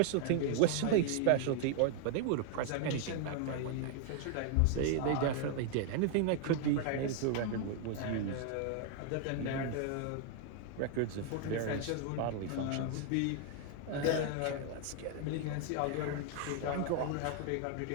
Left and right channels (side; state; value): both; different; correlation 0.00